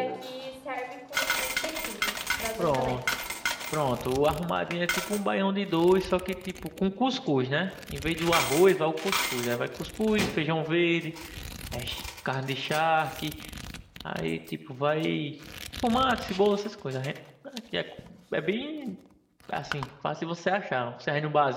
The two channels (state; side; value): identical; both; correlation 1.00